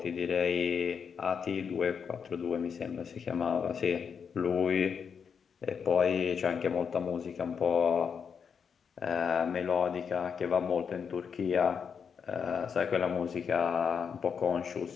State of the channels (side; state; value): right; quieter; 6.6 dB